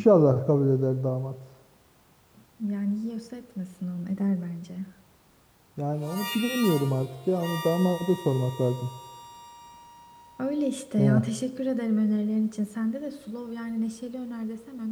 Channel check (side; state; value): both; identical; correlation 1.00